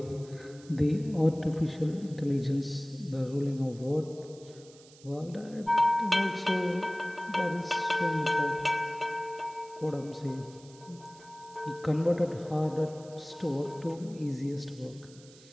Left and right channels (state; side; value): noise; right; hiss, 23 dB below the sound